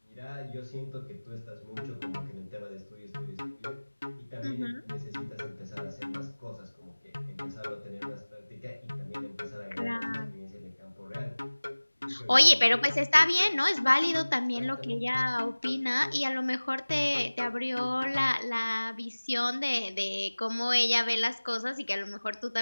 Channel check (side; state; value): both; inverted; correlation -1.00